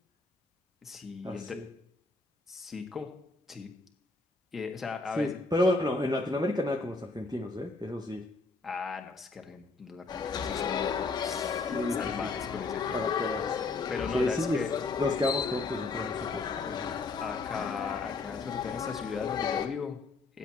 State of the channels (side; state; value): right; quieter; 3.6 dB